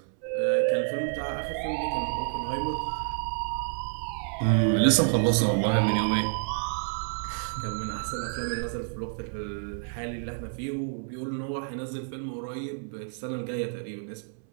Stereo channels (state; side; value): silent; left; 59 dB below the other